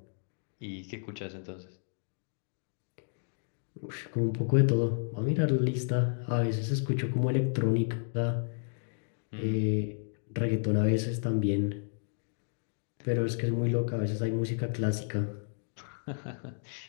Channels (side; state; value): right; silent; digital silence